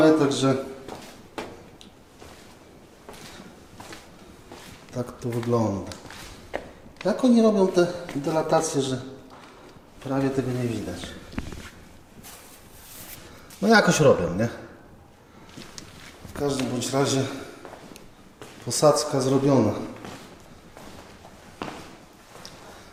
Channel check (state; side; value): identical; both; correlation 1.00